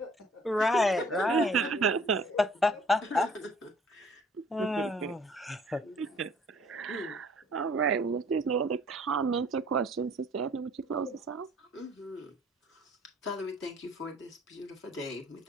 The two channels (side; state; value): both; normal; correlation 0.56